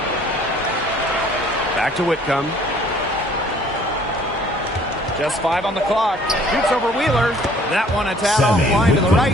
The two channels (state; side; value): normal; both; correlation 0.56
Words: Back to Whitcomb. Just 5 on the clock. Shoots over Wheeler. That one a tad offline to the right,